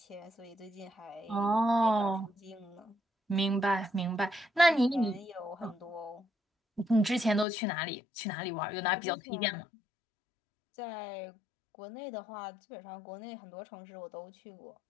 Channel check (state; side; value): drops out; right; at 7.5 s